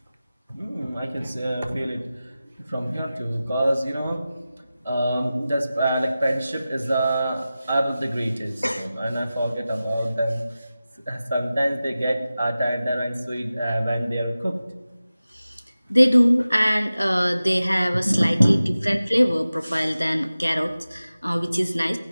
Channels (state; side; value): inverted; both; correlation -0.95